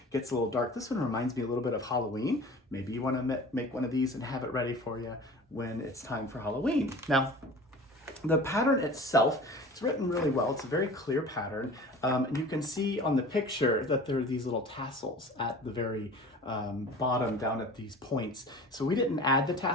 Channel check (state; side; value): normal; both; correlation 0.40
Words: gets a little dark. This one reminds me a little bit of Halloween. Maybe you want to make one of these and have it ready for you when it's time for Halloween. Now, the pattern itself, it's written really well. It's a very clear pattern. And you can see on the picture that there are these little tassels at the very bottom down at these points. So we didn't add the